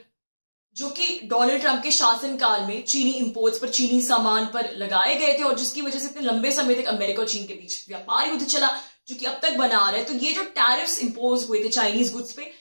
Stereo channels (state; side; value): inverted; both; correlation -1.00